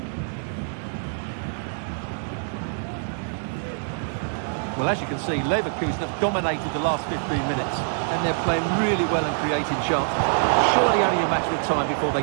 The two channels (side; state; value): left; silent; digital silence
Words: Well, as you can see, Leverkusen have dominated the last 15 minutes, and they're playing really well and creating chances. Surely only a matter of time before they